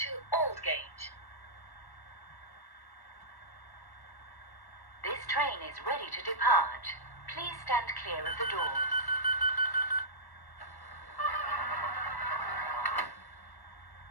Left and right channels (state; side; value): late; right; 1.1 ms